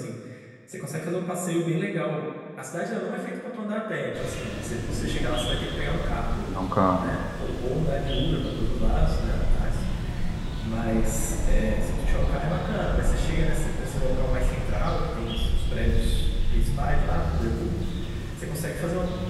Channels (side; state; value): both; identical; correlation 1.00